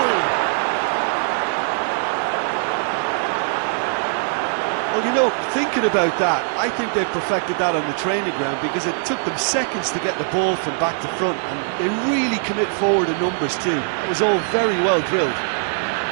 Well, you know, thinking about that, I think they perfected that on the training ground because it took them seconds to get the ball from back to front, and they really commit forward in numbers too. That was all very well drilled.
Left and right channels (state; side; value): silent; left; 65 dB below the other